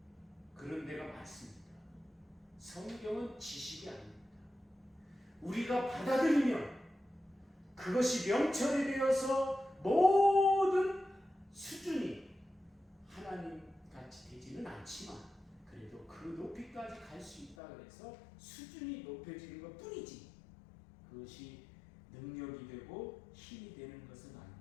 그런 데가 많습니다. 성경은 지식이 아닙니다. 우리가 받아들이면 그것이 명철이 되어서 모든 수준이 하나님 같이 되지는 않지만 그래도 그 높이까지 갈 수 있다 그래서 수준이 높여지는 것 뿐이지 그것이 능력이 되고 힘이 되는 것은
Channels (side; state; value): right; drops out; at 17.6 s